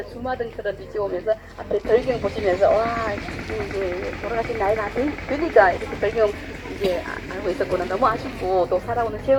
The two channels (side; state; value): both; identical; correlation 1.00